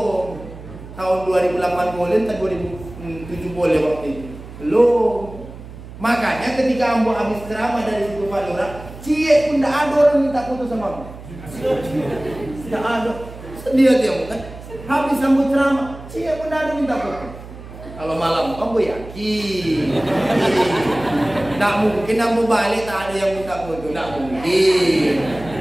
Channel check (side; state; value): right; noise; hum, 15 dB below the sound